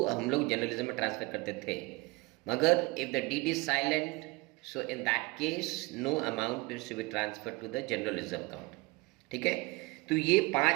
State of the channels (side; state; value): left; quieter; 23.6 dB